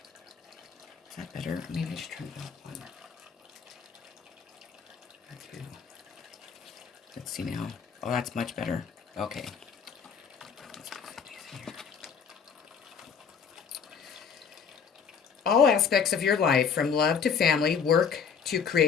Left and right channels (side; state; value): right; quieter; 6.6 dB